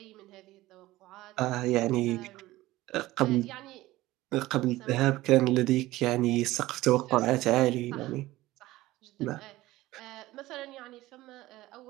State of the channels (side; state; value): left; quieter; 17.5 dB